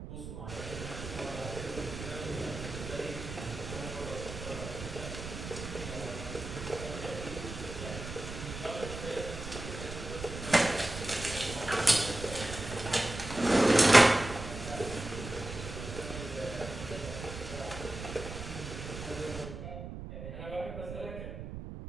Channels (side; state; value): right; noise; rumble, 9 dB below the sound